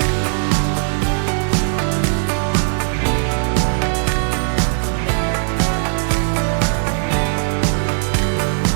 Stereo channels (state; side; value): silent; left; 64 dB below the other